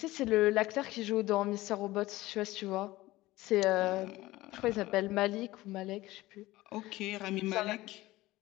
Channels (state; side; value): quieter; right; 18.0 dB